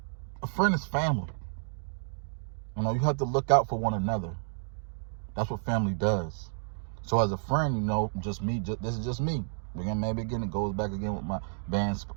friend is family. You have to look out for one another. That's what family does. So as a friend, just me. This is just me. It goes back again with my band's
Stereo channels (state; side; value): silent; left; digital silence